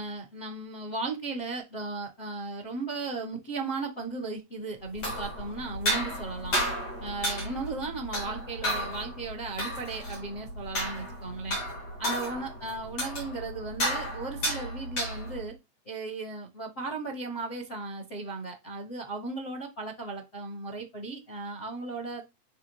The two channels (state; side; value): late; right; 8.2 ms